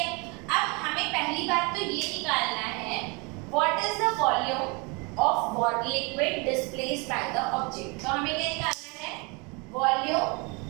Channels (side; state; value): left; quieter; 29.8 dB